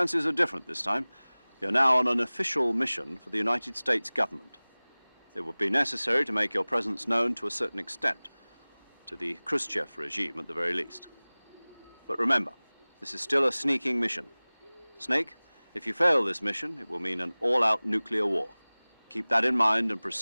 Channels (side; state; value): both; inverted; correlation -1.00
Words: are different this time. You're now on an official mission for the United States government. It would be necessary to make your presence known to a certain extent, to the Khrushchev regime at the very least. But remember, this is still a sneaking mission. Snake, if you fail this mission, it will mean an all-out nuclear war. Keep that in mind and